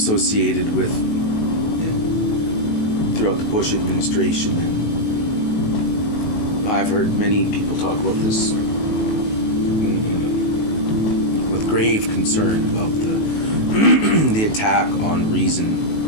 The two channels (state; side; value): late; right; 18 ms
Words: with throughout the Bush administration. And I've heard many people talk about this with grave concern about the attack on reason